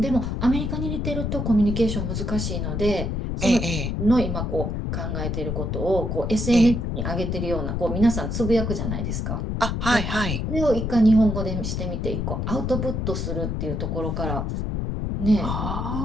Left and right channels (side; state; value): left; noise; rumble, 1 dB below the sound